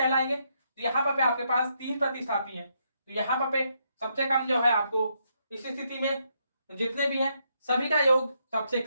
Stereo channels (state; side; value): inverted; both; correlation -0.77